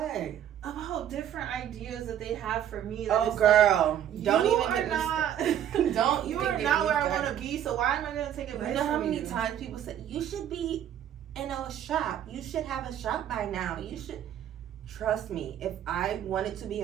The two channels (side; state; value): left; quieter; 10.4 dB